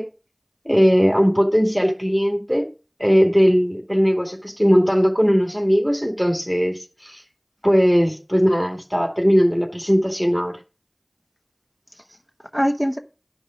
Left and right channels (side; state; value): both; identical; correlation 1.00